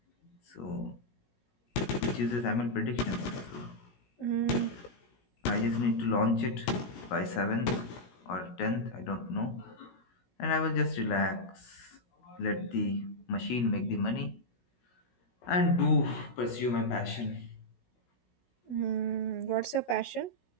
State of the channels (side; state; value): right; late; 16 ms